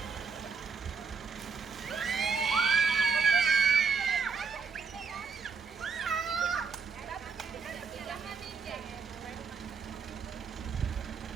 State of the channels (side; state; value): left; quieter; 5.3 dB